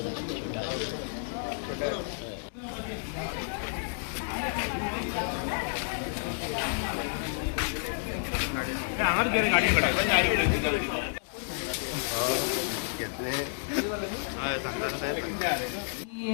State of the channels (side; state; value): right; silent; digital silence